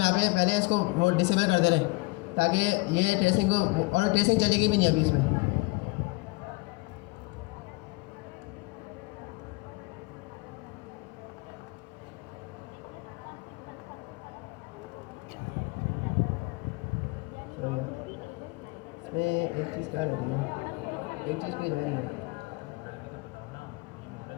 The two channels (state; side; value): quieter; right; 25.1 dB